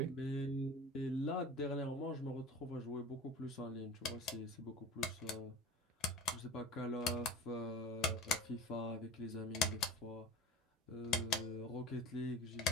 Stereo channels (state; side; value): normal; both; correlation 0.36